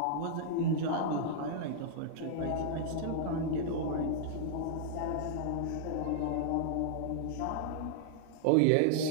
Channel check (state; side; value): different; both; correlation -0.01